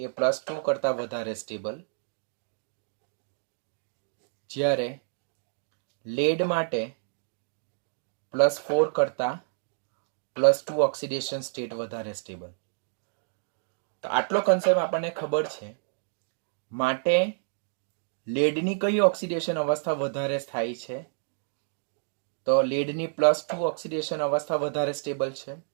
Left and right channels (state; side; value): silent; left; digital silence